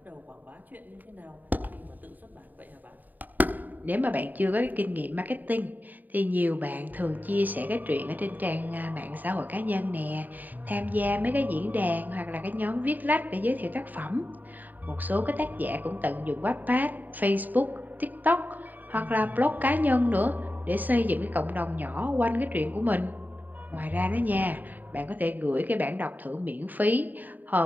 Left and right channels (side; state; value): left; late; 0.085 ms